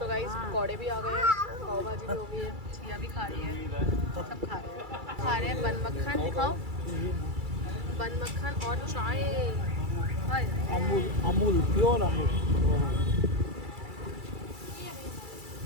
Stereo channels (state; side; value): late; left; 2.3 ms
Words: गाइस पकौड़े भी आ गए हैं, पाव भाजी भी हो गई है, चिया भी खा रही है, सब खा रहे हैं बन मक्खन। दिखाओ बन मक्खन और चाय। अमूल प्योर अमूल।